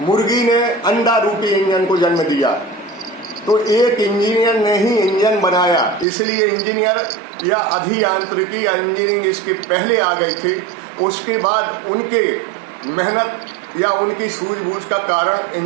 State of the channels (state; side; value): drops out; left; at 6.1 s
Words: मुर्गी ने अंडा रूपी इंजन को जन्म दिया। तो एक इंजीनियर ने ही इंजन बनाया, इसलिए इंजीनियर या अभियांत्रिकी या इंजीनियरिंग इसके पहले आ गई थी। उसके बाद उनके मेहनत या उनकी सूझबूझ का कारण